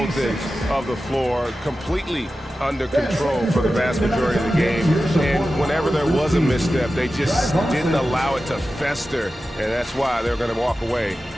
ends of the floor, completely under control for the vast majority of the game. And whenever there was a misstep, they just didn't allow it to fester, and that's why they're going to walk away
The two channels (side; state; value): both; normal; correlation 0.93